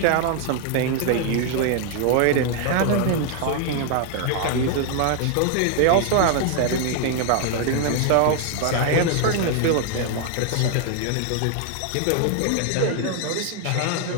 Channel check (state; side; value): different; both; correlation 0.00